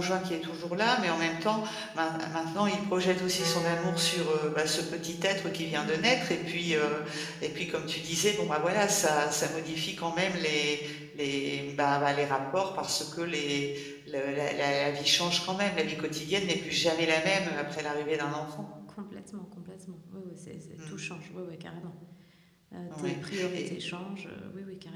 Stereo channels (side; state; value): both; identical; correlation 1.00